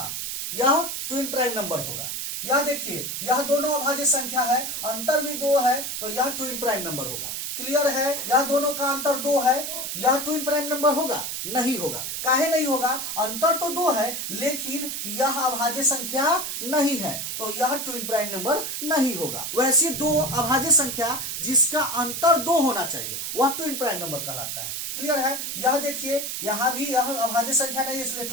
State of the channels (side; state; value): right; noise; hiss, 4 dB below the sound